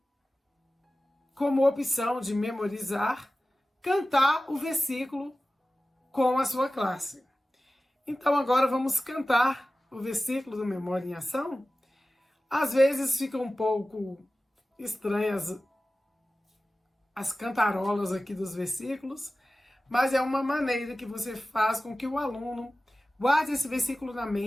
como opção de memorizar, cantar o versículo com a sua classe. Então agora vamos cantar o versículo do Memória em Ação. Às vezes fica um pouco estranhas as cantarolas aqui dos versículos, mas é uma maneira que você faz com que o aluno guarde esse versículo na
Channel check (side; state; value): both; normal; correlation 0.96